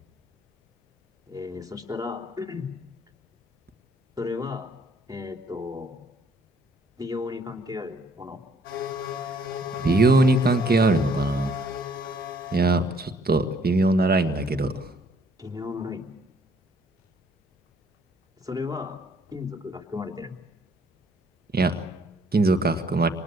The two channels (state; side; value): normal; both; correlation 0.64